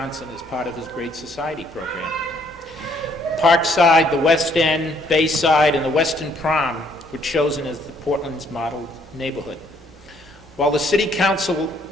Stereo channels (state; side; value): normal; both; correlation 0.66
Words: as part of his Great Society program. Parkside, the West End, Bayside, and the Western Prom were chosen as the Portland's model neighborhood. While the City Council